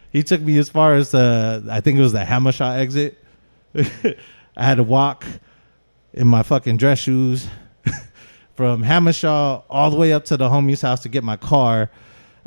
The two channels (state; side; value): inverted; both; correlation -1.00